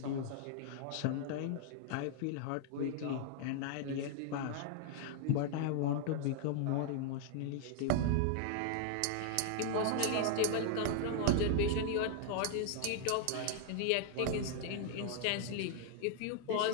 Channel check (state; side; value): different; both; correlation 0.00